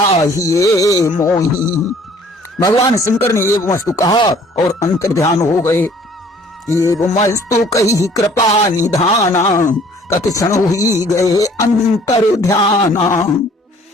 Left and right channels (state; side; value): normal; both; correlation 0.56